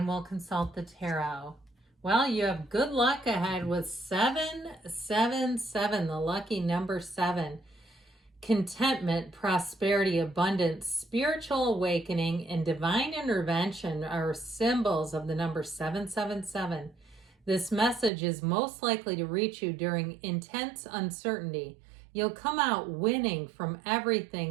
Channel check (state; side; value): drops out; left; at 18.1 s